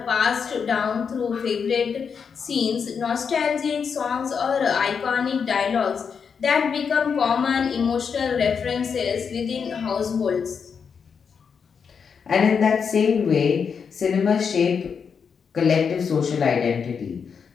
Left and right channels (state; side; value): quieter; right; 6.3 dB